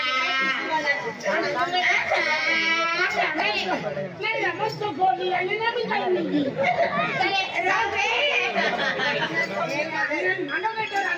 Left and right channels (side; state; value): both; identical; correlation 1.00